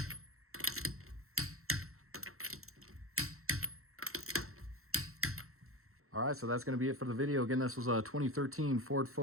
All right, so that's going to be it for the video. Again, this was a 2013 Ford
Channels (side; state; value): left; late; 0.63 ms